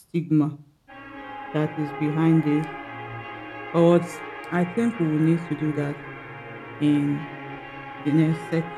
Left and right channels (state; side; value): identical; both; correlation 1.00